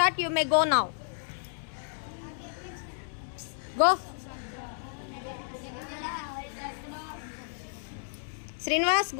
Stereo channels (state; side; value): silent; right; 57 dB below the other